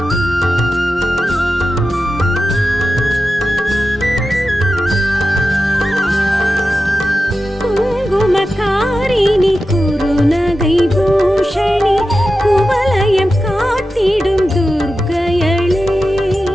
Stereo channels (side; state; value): both; normal; correlation 0.92